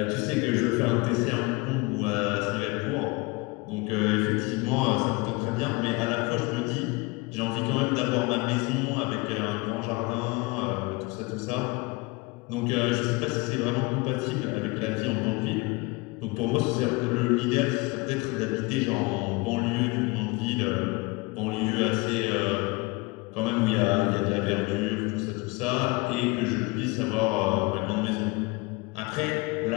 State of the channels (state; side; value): quieter; right; 25.5 dB